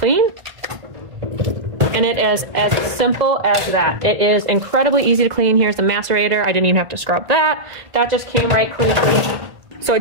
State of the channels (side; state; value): left; late; 1.5 ms